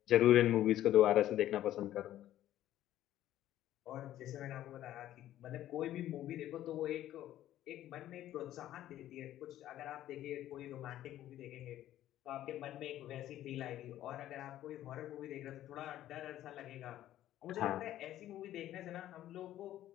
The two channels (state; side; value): quieter; right; 13.0 dB